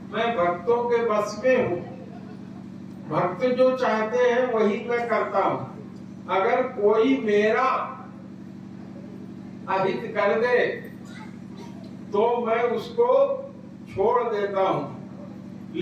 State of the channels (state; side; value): identical; both; correlation 1.00